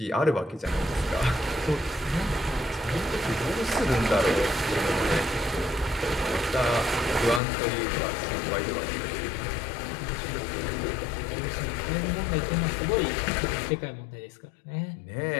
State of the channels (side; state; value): right; drops out; at 7.4 s